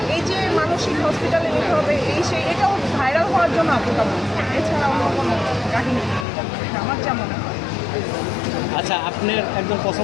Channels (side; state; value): right; drops out; at 6.2 s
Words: এই যে মানসিক হসপিটালে নিতে হবে এই সেই, এটাও ভাইরাল হওয়ার জন্য আপুটা বলছে, এছাড়া অন্য কোনো কাহিনী নেই। এটা আমার যা মনে হয়। আচ্ছা, আপনার একজন